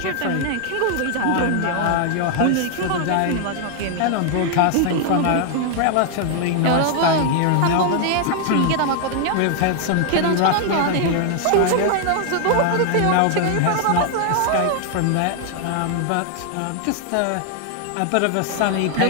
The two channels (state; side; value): different; both; correlation 0.00